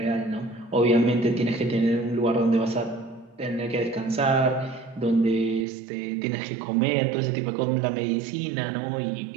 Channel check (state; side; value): drops out; left; at 5.7 s